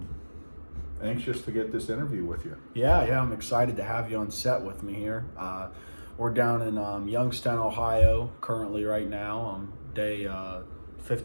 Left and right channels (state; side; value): inverted; both; correlation -1.00